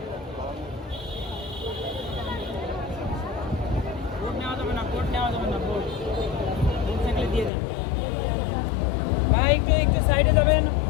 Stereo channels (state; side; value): drops out; right; at 7.5 s